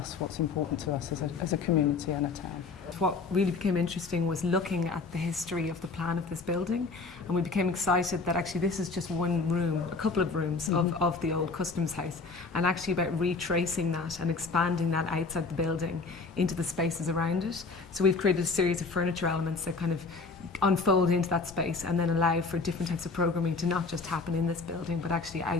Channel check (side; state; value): right; quieter; 4.1 dB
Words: what's important to us as a community and a town. What really became interesting was looking at the history of the plan of this building, and we became excited that actually this is just one room, a couple of rooms of the old Customs House, and actually about retracing that and expanding that outside the building into the spaces around it. So we've created a series of furniture elements that kind of unfold into that space and then allow for different types of programming to not just happen in this building but actually